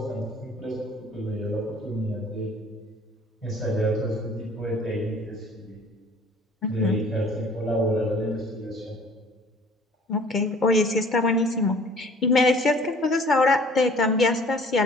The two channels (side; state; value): both; normal; correlation 0.52